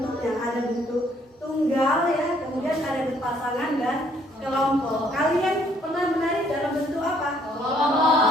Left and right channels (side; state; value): both; normal; correlation 0.65